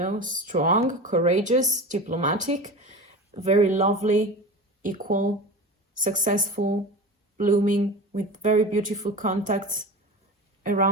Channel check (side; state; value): both; normal; correlation 0.30